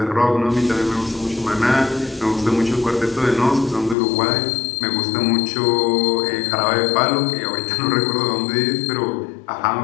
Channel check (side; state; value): right; drops out; at 4.0 s